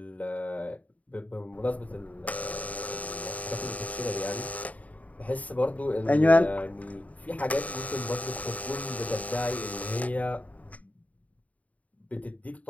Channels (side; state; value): right; late; 0.070 ms